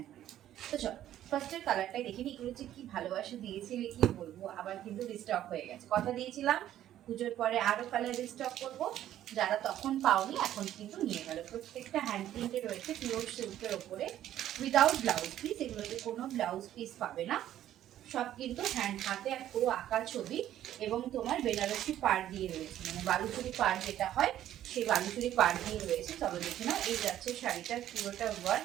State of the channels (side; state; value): left; quieter; 12.1 dB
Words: প্রিন্ট। তো চলো ফার্স্টের কালারটাই দেখে নিই। এগুলো যে কি ভালোবাসা দিয়েছিলে কি বলবো, আবার কিন্তু রিস্টক হয়ে গেছে। কথা দিয়েছিলাম পুজোর পরে আরো কালার রিস্টক করবো, যারা তখন পাওনি এখন কিন্তু নিয়ে গেল। প্রত্যেকটা হ্যান্ড প্রিন্টে রয়েছে পিওর সিল্কের ওপরে, উইদাউট ব্লাউজ পিস। এগুলোতে কোনো ব্লাউজ পিস পাবে না, সব কিন্তু হ্যান্ড হাতে আর পুরো আঁকা ছবি। এবং তোমার বেনারসি পাড় দিয়ে রয়েছে, মানে বালুচুরি পাড় যেটা হয় সেই বালুচুরি পাড় দিয়ে রয়েছে। চলো দেখে নাও। এই যাচ্ছে শাড়িটার পুরোটা